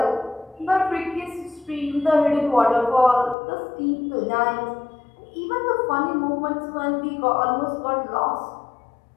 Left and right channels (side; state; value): right; drops out; at 3.4 s